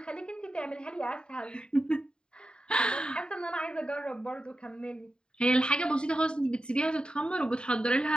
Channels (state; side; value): late; right; 0.050 ms